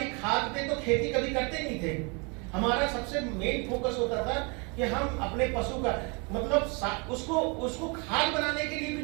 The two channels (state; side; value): quieter; left; 31.9 dB